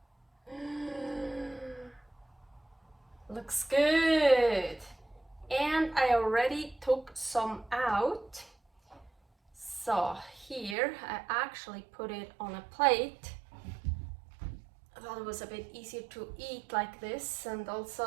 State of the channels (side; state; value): left; drops out; at 10.8 s